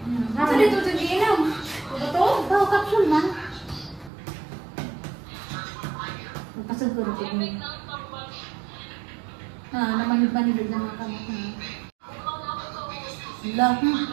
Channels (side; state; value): left; drops out; at 4.1 s